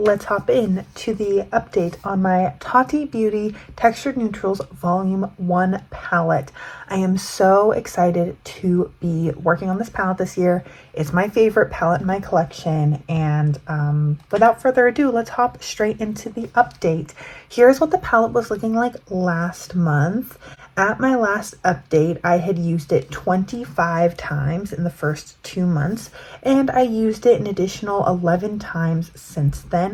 hop in to the update on my Tati Beauty Textured Neutrals Volume 1 palette. I am so excited to be working on this palette this year. It's my favorite palette in my collection, and without further ado, let's hop straight into the update. Here's what the palette was looking like last month. At my last update, I had used it 25 times in the first 2 months, and I used it an additional 11 times since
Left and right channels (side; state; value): both; identical; correlation 1.00